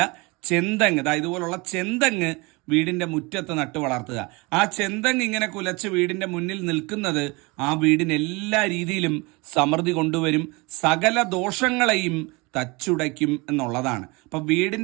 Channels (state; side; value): quieter; left; 26.0 dB